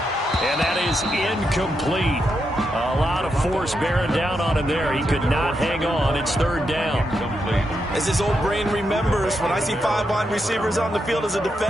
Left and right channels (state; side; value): normal; both; correlation 0.83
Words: And that is incomplete. A lot of force bearing down on him there. He could not hang on. It's third down. As his old brain remembers, when I see 5 wide receivers on the field as a